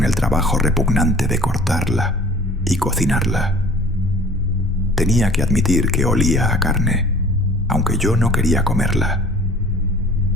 el trabajo repugnante de cortarla y cocinarla. Tenía que admitir que olía a carne, aunque yo no quería comerla.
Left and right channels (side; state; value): both; normal; correlation 0.49